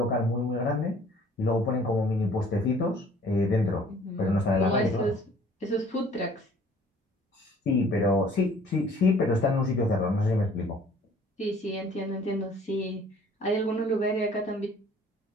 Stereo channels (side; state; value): both; normal; correlation 0.54